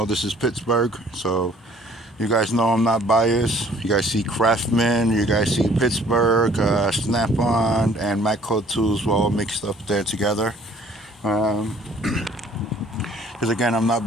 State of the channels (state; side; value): normal; both; correlation 0.56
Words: this is Pittsburgh, so you guys know I'm not biased. You guys see Craftsman, you guys see Pittsburgh, Snap-on, and Matco tools all mixed up there together. Because again, I'm not